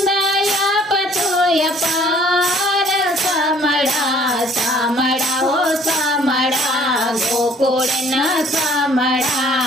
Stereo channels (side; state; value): both; normal; correlation 0.58